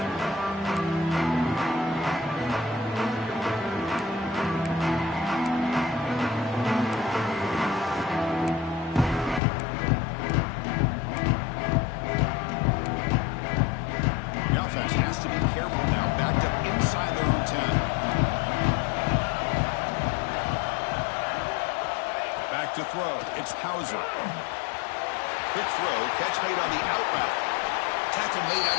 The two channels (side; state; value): right; drops out; at 9.4 s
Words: To throw. It's Hauser. Quick throw. Catch made on the out route. Tackle made